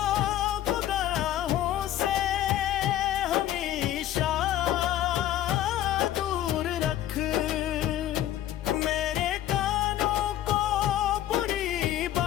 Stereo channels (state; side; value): quieter; right; 12.5 dB